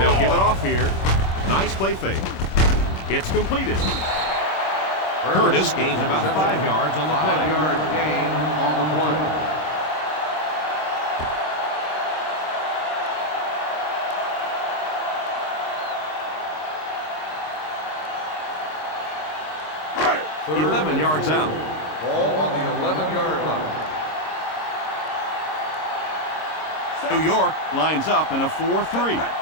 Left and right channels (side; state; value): right; late; 26 ms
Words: give it off here. Nice play fake. It's completed. Curtis gains about 5 yards on the play. 5-yard gain on the play. Third 11 yards out. Ball on the 11-yard line. New York lines up in a 4-3.